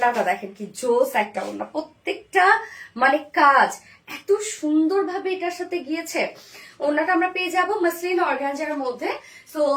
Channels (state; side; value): identical; both; correlation 1.00